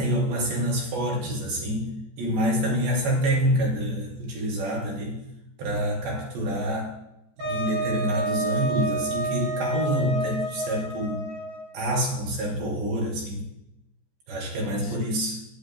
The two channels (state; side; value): late; left; 14 ms